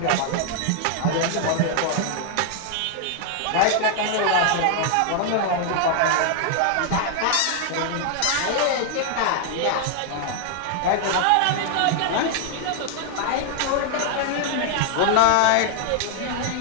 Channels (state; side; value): different; both; correlation 0.00